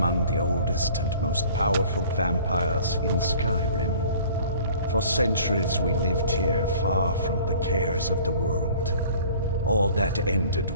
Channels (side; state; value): both; inverted; correlation -0.49